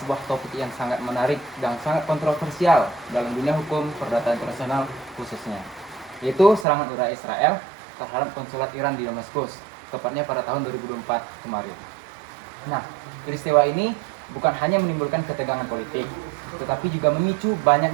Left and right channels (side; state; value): left; drops out; at 6.7 s